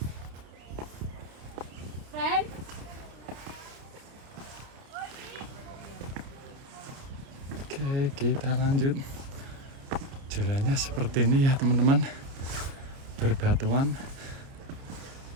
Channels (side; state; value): left; late; 29 ms